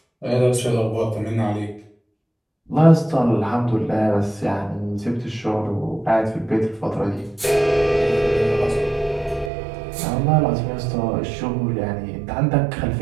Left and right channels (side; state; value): left; drops out; at 9.5 s